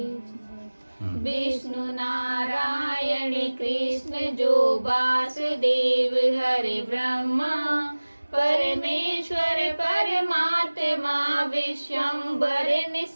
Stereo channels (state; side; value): inverted; both; correlation -1.00